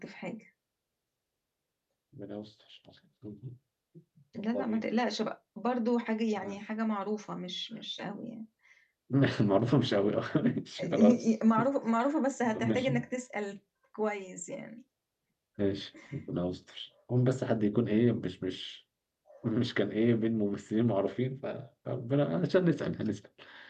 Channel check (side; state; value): both; identical; correlation 1.00